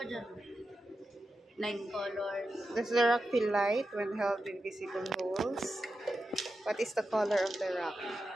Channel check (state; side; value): normal; both; correlation 0.90